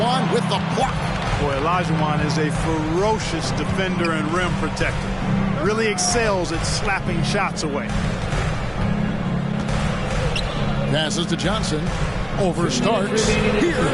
with the block. Boy, Olajuwon is a ferocious defender and rim protector. Really excels at slapping shots away. Passes to Johnson. Over Starks.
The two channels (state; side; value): identical; both; correlation 1.00